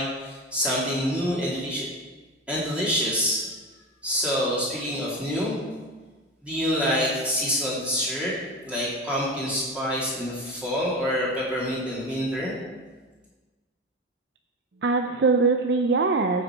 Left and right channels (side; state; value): both; normal; correlation 0.21